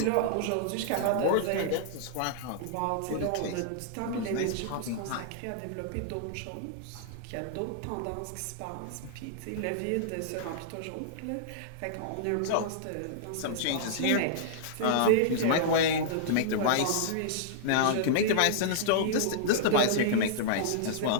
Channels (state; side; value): different; both; correlation -0.02